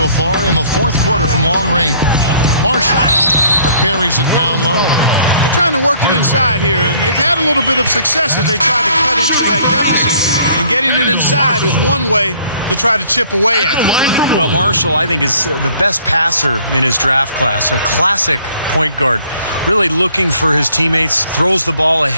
far in the fourth quarter from long range. Marshall buries it down low. They're trying to work it inside here, and they've had a little bit of success as they try to cut into that deficit. And getting it inside is one way to try to chip away at it. Well, Marshall, I think, is the best passer in his draft class, a classic point guard. Really looking for his teammates, throws the ball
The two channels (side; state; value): both; inverted; correlation -0.59